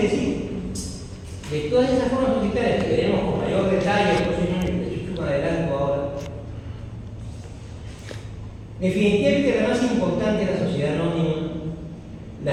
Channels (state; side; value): identical; both; correlation 1.00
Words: decir de todas esas formas societarias que veremos con mayor detalle el próximo año, de hecho me adelanto ahora. Definitivamente la más importante es la sociedad anónima,